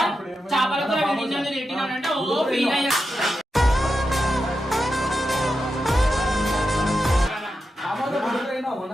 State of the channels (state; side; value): normal; both; correlation 0.88